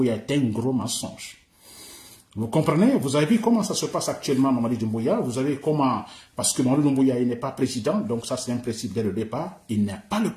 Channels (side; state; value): both; identical; correlation 1.00